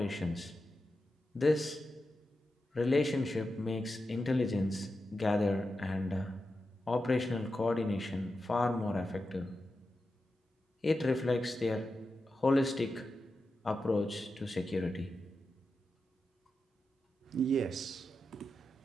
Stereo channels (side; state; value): both; normal; correlation 0.90